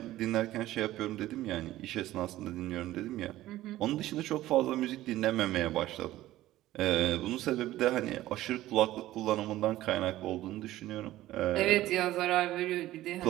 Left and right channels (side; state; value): left; quieter; 15.3 dB